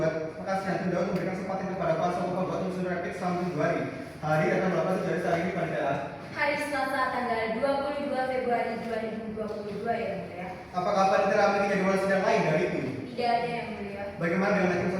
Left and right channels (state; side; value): identical; both; correlation 1.00